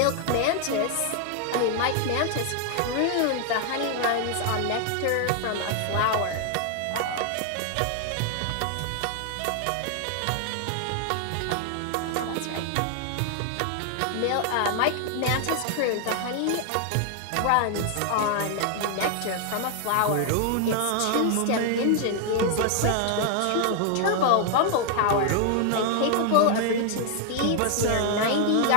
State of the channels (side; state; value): both; different; correlation 0.00